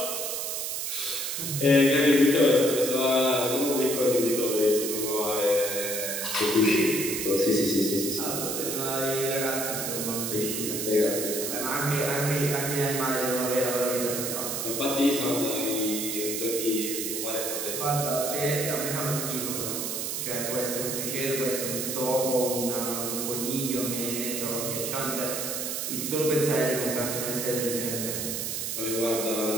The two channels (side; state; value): right; noise; hiss, 2 dB below the sound